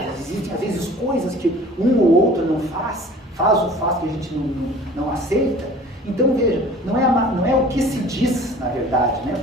existem às vezes coisas que um ou outro não faz o fato que a gente não aceita. Então veja, não é o que se diz na verdade, né?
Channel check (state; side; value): normal; both; correlation 0.46